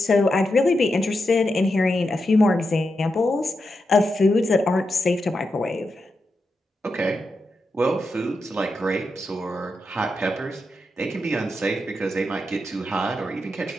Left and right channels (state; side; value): normal; both; correlation 0.87